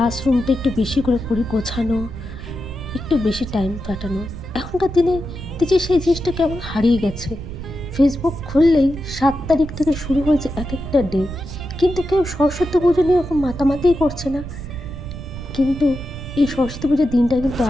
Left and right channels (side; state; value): right; noise; rumble, 10 dB below the sound